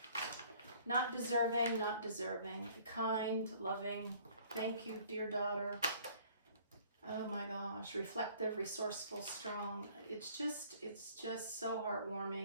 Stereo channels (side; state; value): both; inverted; correlation -0.55